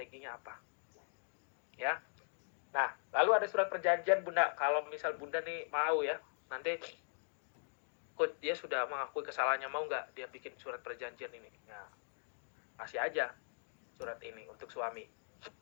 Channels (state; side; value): silent; right; digital silence